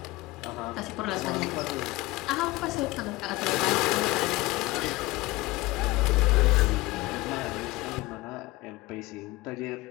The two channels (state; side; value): quieter; right; 20.3 dB